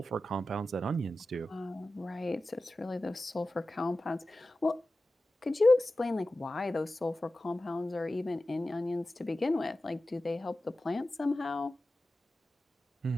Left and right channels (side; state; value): both; normal; correlation 0.94